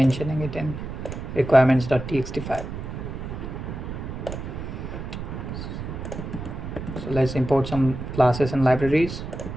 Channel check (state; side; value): noise; right; rumble, 7 dB below the sound